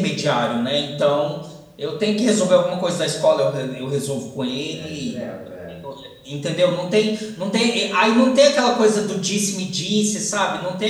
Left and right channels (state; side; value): identical; both; correlation 1.00